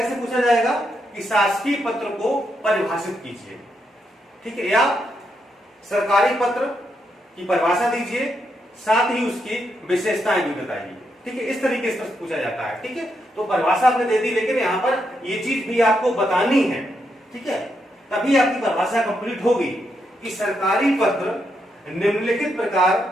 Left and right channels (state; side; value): normal; both; correlation 0.81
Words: पूछा जाएगा कि शासकीय पत्र को परिभाषित कीजिए। ठीक है, या सरकारी पत्र की परिभाषा दीजिए, साथ ही उसकी विशेषताएं भी बताइए। ठीक है, इस तरीके से पूछा जाता है। ठीक है, तो परिभाषा आपने दे दी, लेकिन यहाँ पर ये चीज भी आपको बतानी है। ठीक है, तभी आपकी परिभाषा कंप्लीट होगी कि सरकारी पत्र निम्नलिखित प्रकार